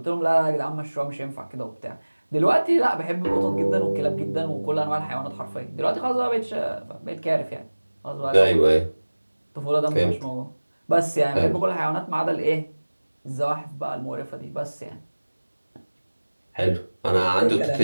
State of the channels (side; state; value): both; inverted; correlation -1.00